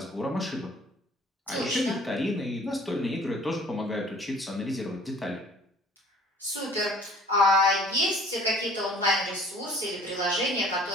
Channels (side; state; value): both; normal; correlation 0.52